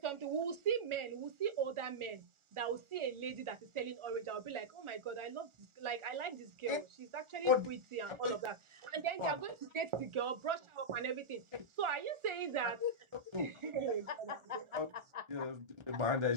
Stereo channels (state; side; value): late; left; 1.4 ms